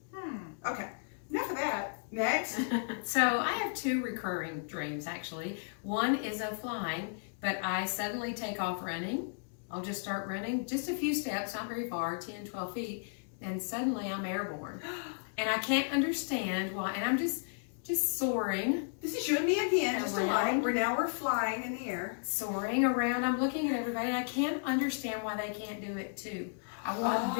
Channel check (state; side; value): silent; right; digital silence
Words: Hmm. Okay, enough of that. Next. So I have 2 recurring dreams actually. One is of flying, but I suddenly take off running. I'll just start running just a few steps, not very far, 10, 12 feet, and suddenly I'm airborne. And I can't understand why, and I'm just soaring. This is you and me again, just Around. alike. We're flying in the air. Soaring around. I'm looking at everybody. I can't understand why they can't do it too. I want